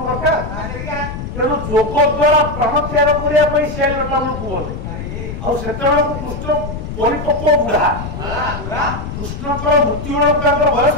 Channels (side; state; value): left; noise; rumble, 7 dB below the sound